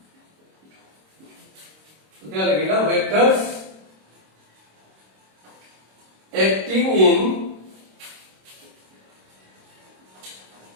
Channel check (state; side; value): late; left; 26 ms